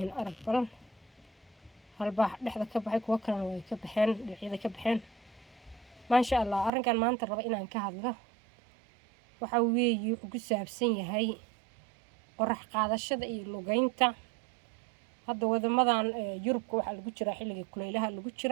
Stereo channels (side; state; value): left; drops out; at 6.7 s